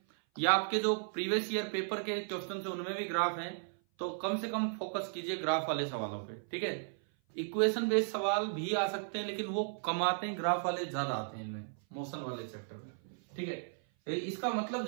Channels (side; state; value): left; silent; 54 dB below the other